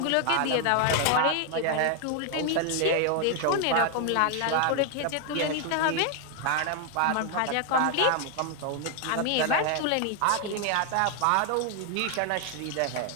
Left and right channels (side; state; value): both; different; correlation 0.00